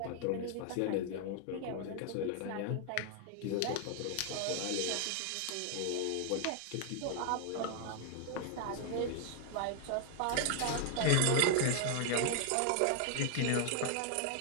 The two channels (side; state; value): both; different; correlation 0.00